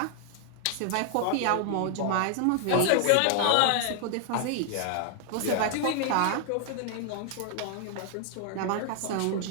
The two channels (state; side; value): different; both; correlation 0.00